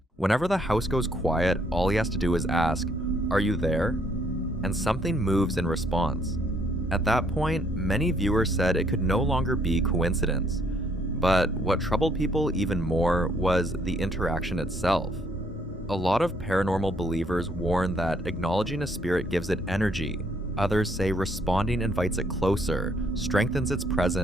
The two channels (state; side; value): normal; both; correlation 0.67